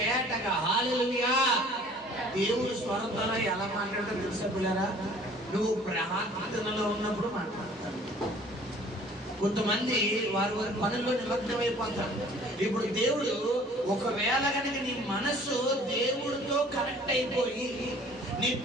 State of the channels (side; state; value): both; normal; correlation 0.52